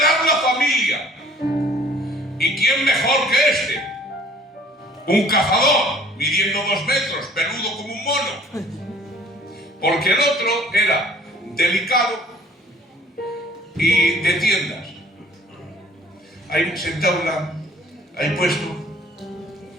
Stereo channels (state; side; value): normal; both; correlation 0.54